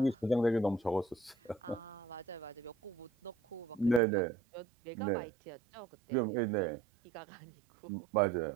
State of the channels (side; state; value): left; drops out; at 4.0 s